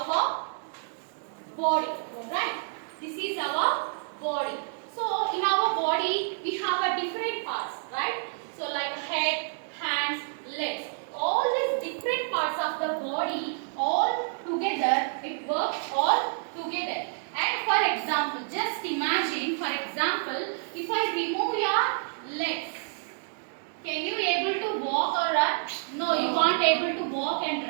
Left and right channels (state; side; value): silent; left; digital silence